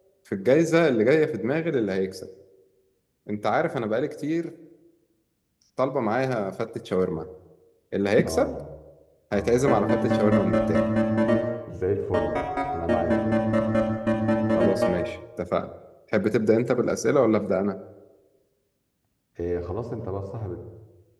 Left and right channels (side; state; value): both; identical; correlation 1.00